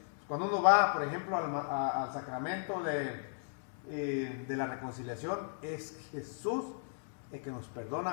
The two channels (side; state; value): right; silent; digital silence